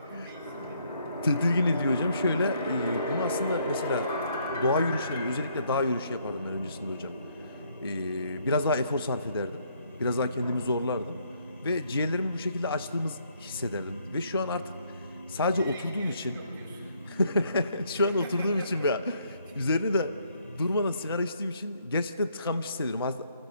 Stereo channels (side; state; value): both; inverted; correlation -0.69